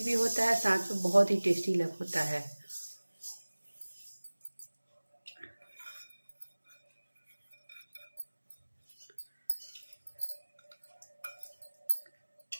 भी होता है, साथ में बहुत ही टेस्टी लग होता है।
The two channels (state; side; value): inverted; both; correlation -1.00